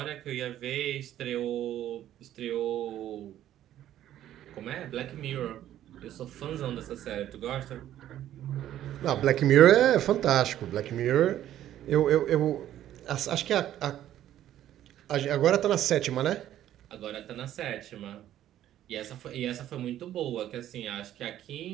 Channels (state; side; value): quieter; left; 12.1 dB